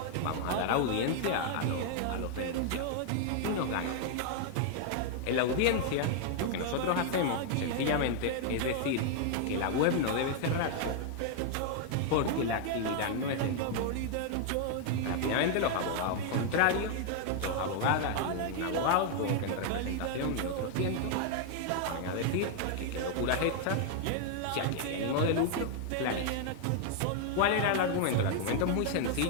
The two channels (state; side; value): different; both; correlation 0.00